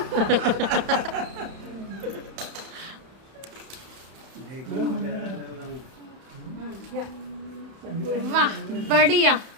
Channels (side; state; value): left; late; 31 ms